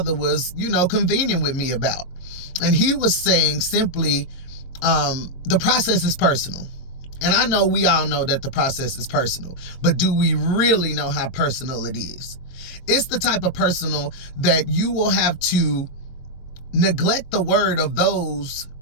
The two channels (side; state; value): right; late; 22 ms